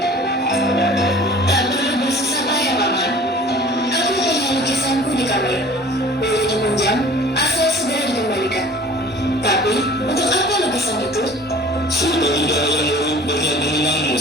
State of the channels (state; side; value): normal; both; correlation 0.46